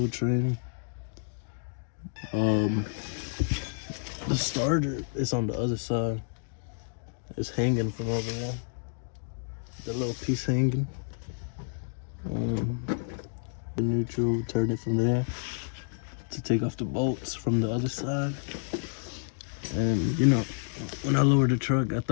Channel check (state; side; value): silent; right; digital silence